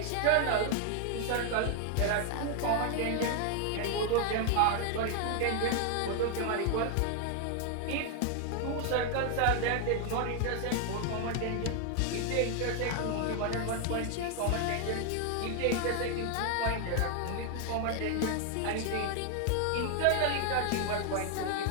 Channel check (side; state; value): both; different; correlation 0.00